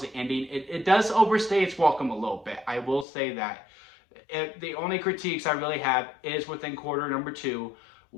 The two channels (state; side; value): drops out; right; at 3.1 s